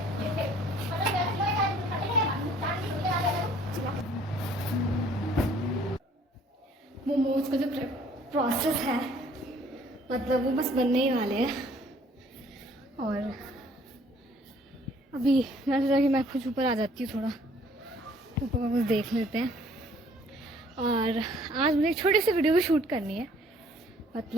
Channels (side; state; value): both; normal; correlation 0.58